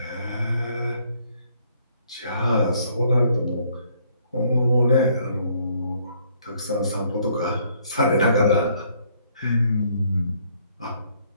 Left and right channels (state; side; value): inverted; both; correlation -0.66